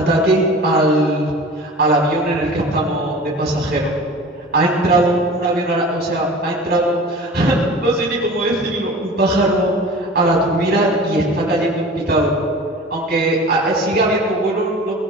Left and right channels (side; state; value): both; normal; correlation 0.39